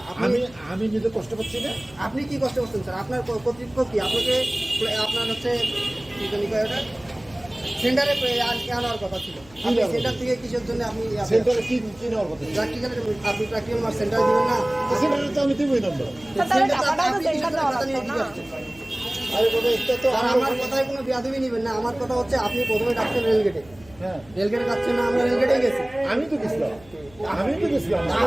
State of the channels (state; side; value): noise; left; hum, 24 dB below the sound